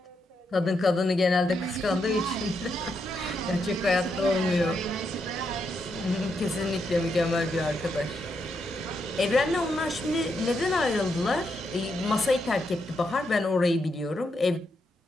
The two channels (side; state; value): both; normal; correlation 0.81